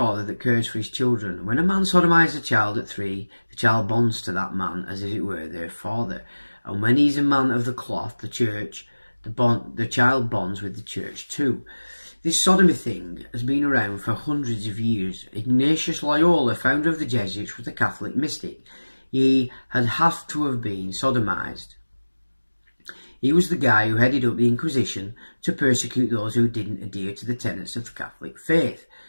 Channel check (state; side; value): inverted; both; correlation -1.00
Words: that cares for his children. When a man sodomizes a child at 3, the child bonds to that man as if it were their father. And when he's a man of the cloth, the church, the child bonds with the church too. This sodomy thing has been around for hundreds of years. Ignatius Loyola, founder of the Jesuits, was a Catholic mystic. He had to have been sodomized. He was the guy who headed up the Inquisition to persecute those who didn't adhere to the tenets of the Catholic faith.